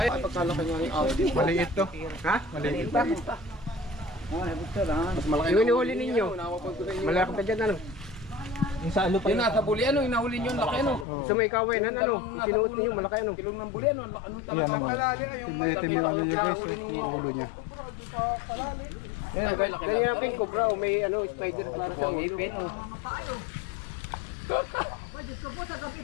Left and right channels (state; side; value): drops out; right; at 11.1 s